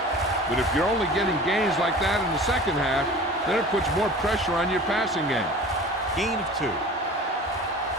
But if you're only getting gains like that in the second half, then it puts more pressure on your passing game. Gain of 2.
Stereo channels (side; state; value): both; normal; correlation 0.40